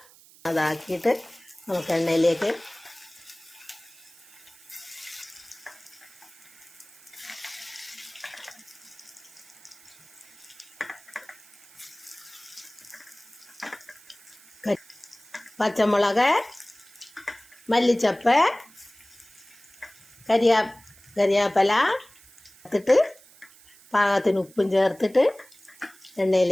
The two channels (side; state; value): right; noise; hiss, 24 dB below the sound